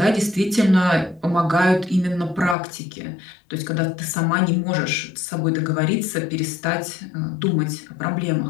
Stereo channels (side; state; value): right; drops out; at 2.6 s